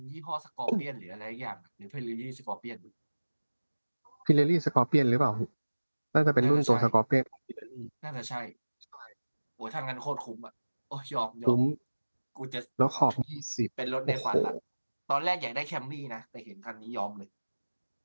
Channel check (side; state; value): both; inverted; correlation -1.00